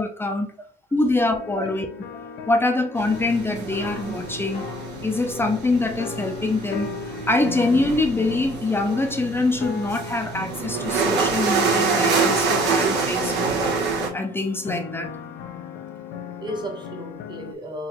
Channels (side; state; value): both; normal; correlation 0.57